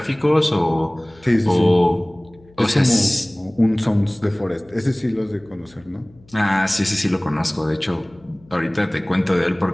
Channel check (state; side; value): noise; left; hum, 27 dB below the sound